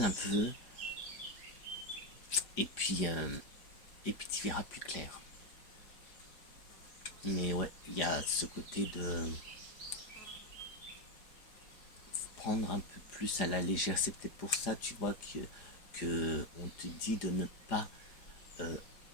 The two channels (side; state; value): right; late; 4.9 ms